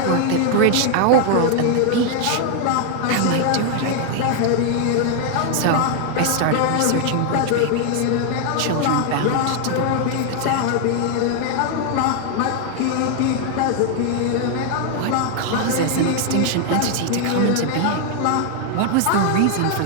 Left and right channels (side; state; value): both; different; correlation 0.00